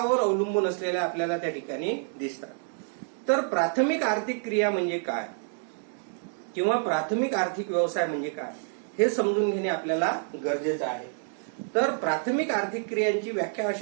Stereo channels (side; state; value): left; silent; 59 dB below the other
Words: अवलंबून असलेल्या आपल्याला त्या ठिकाणी दिसतात. तर प्राथमिक आर्थिक क्रिया म्हणजे काय किंवा प्राथमिक आर्थिक व्यवसाय म्हणजे काय हे समजून घेणे आपल्याला गरजेचं आहे. तर प्राथमिक आर्थिक क्रियांची व्याख्या